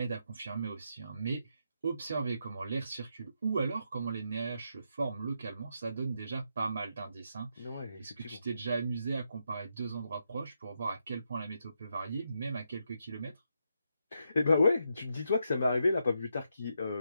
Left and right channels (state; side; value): inverted; both; correlation -0.81